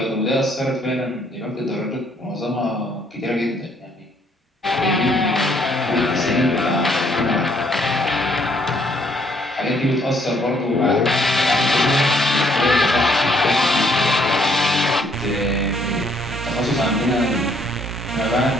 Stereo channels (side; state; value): both; normal; correlation 0.67